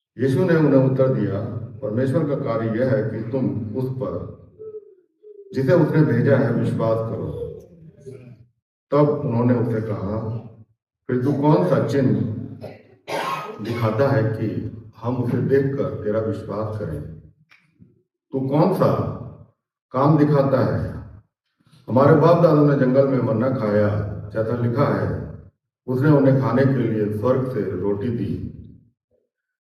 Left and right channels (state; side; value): identical; both; correlation 1.00